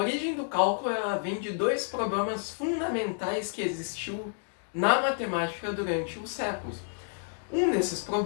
do cálculo ela vem de dois problemas fundamentais que existiu na matemática durante os séculos. Um desses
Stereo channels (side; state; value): right; silent; digital silence